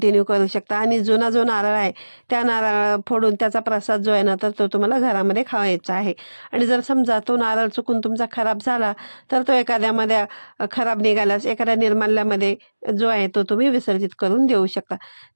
करू शकता. आणि जुना जो नारळ आहे त्या नारळ फोडून त्याचा प्रसाद जो आहे ना तर तो तुम्हाला घरामध्ये खावायचा आहे. आणि जर समजा तो नारळ चुकून तुमचा खराब झाला तर तो एखाद्यामध्ये खराब निघाल्यास एखाद्या निर्माल्यामध्ये जो आहे तो तुम्ही विसर्जित करून देऊ शकता.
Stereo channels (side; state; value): both; inverted; correlation -1.00